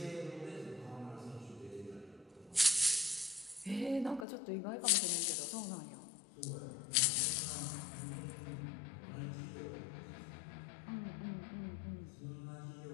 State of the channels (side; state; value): right; drops out; at 4.2 s